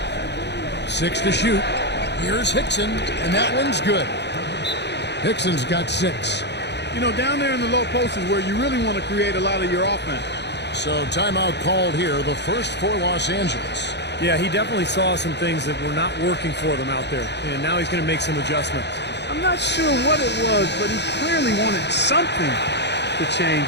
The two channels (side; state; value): right; late; 0.50 ms